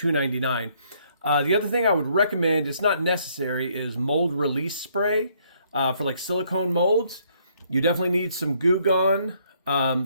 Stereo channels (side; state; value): both; inverted; correlation -0.68